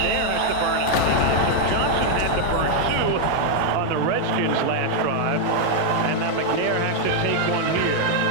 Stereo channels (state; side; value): different; both; correlation 0.00